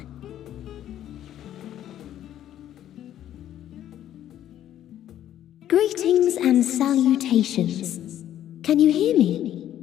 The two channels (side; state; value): right; quieter; 11.5 dB